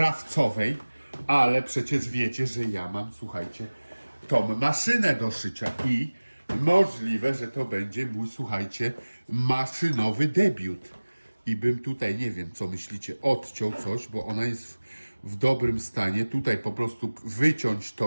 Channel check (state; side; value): inverted; both; correlation -1.00